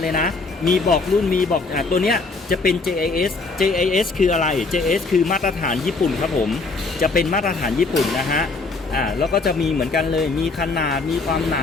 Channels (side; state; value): right; quieter; 3.9 dB